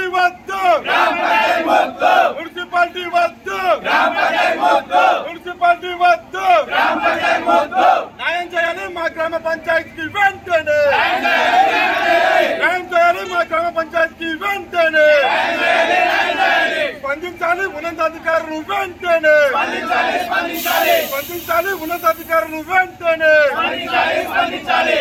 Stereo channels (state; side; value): identical; both; correlation 1.00